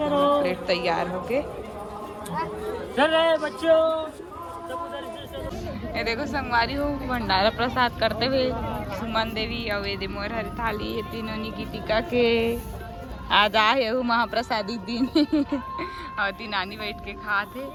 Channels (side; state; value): both; identical; correlation 1.00